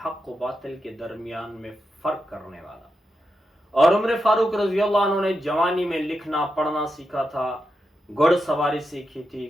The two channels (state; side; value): normal; both; correlation 0.87